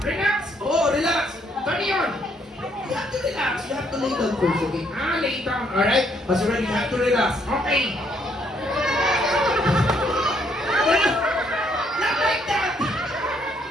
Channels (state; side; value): normal; both; correlation 0.70